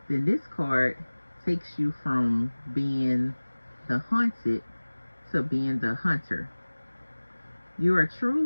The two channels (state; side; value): inverted; both; correlation -1.00